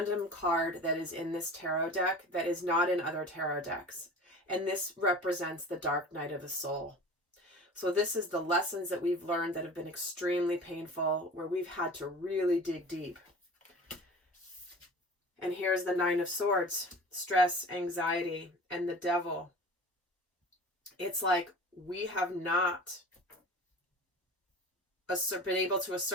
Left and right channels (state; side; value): normal; both; correlation 0.38